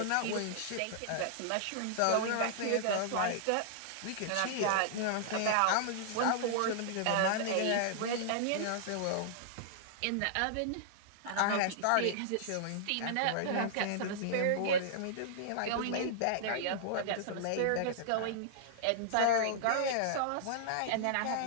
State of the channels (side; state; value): both; different; correlation -0.01